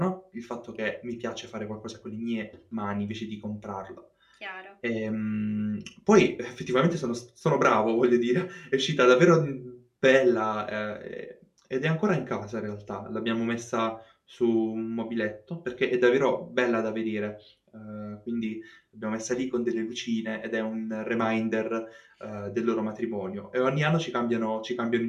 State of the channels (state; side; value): identical; both; correlation 1.00